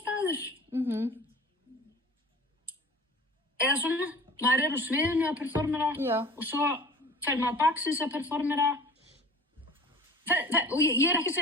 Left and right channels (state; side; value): normal; both; correlation 0.42